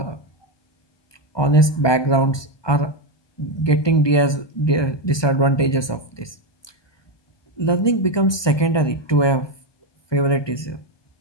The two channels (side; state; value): right; late; 1.2 ms